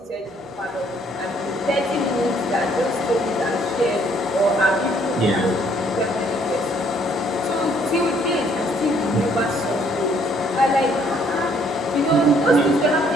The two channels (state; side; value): normal; both; correlation 0.64